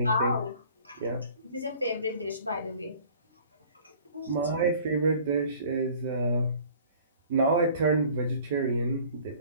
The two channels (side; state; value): both; inverted; correlation -0.50